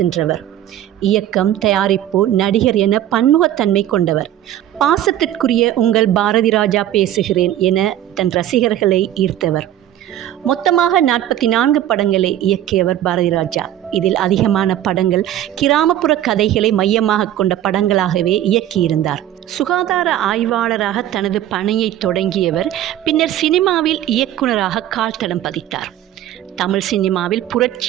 இயக்கம், தயாரிப்பு, நடிகர் என பன்முகத்தன்மை கொண்டவர். பாசத்திற்குரிய உங்கள் பாரதிராஜா பேசுகிறேன் என தன் ரசிகர்களை ஈர்த்தவர். மொத்தமாக 44 படங்களை இயக்கியவர் பாரதிராஜா. இதில் அதிகமான படங்கள் கிராமப்புற கதைகளை மையமாக கொண்ட படங்களாகவே இயக்கியிருந்தார். சுகாதார ஆய்வாளராக தனது பணியை தொடங்கியவர் பின்னர் சினிமாவில் இயக்குனராக கால்தடம் பதித்தார். தமிழ் சினிமாவில்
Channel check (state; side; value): quieter; left; 12.2 dB